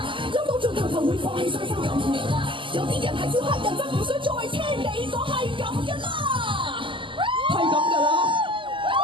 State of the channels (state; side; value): late; left; 0.25 ms